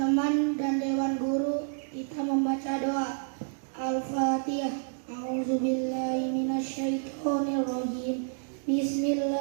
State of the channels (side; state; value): left; silent; digital silence